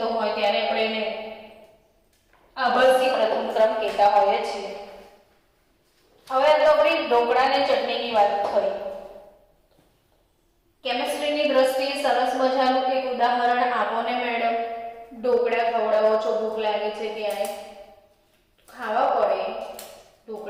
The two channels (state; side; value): identical; both; correlation 1.00